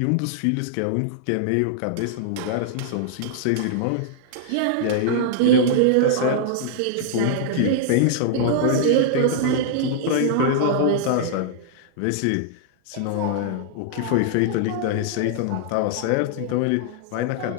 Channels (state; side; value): different; both; correlation -0.01